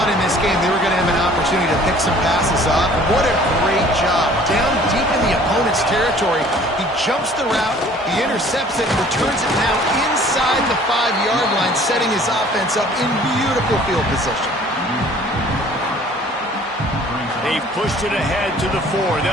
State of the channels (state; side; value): normal; both; correlation 0.52